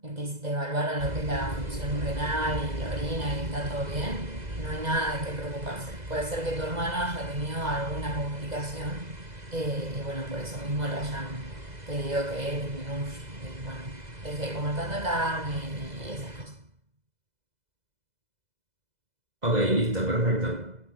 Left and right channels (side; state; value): left; late; 2.0 ms